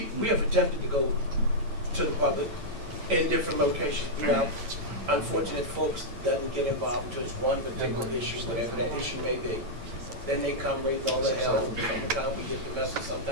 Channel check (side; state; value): left; late; 8.9 ms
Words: have attempted to go to the public in different locations. Now, unfortunate folks doesn't get involved until it's one particular issue, whatever that issue may be. Then they come raising all the hell. Sometimes we get the message,